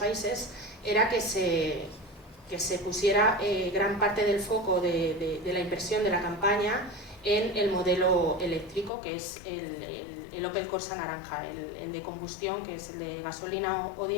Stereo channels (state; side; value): drops out; right; at 8.9 s